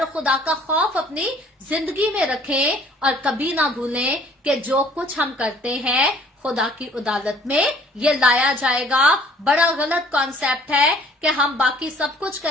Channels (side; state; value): both; normal; correlation 0.56